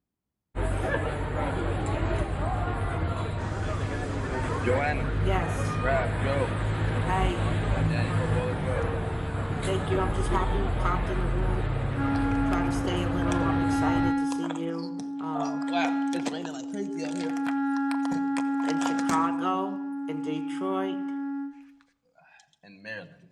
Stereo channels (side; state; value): both; identical; correlation 1.00